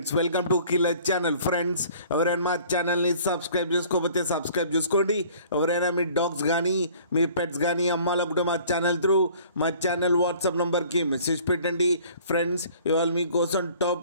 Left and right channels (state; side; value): inverted; both; correlation -0.52